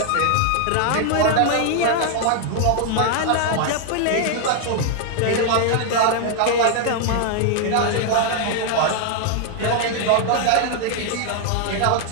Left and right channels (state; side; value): different; both; correlation 0.00